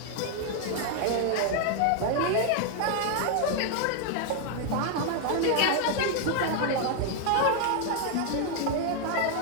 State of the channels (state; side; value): different; both; correlation 0.00